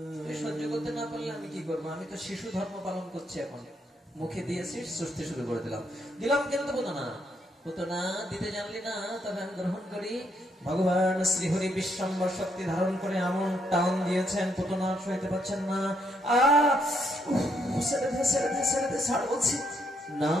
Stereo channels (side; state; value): both; normal; correlation 0.75